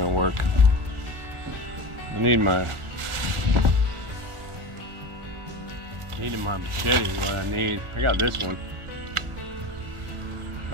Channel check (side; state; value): left; late; 1.5 ms